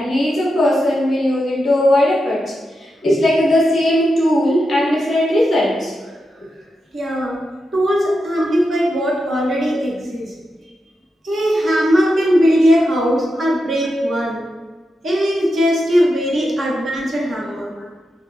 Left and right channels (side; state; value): both; normal; correlation 0.88